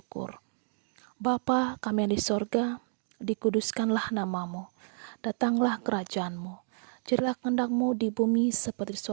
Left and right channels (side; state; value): left; silent; digital silence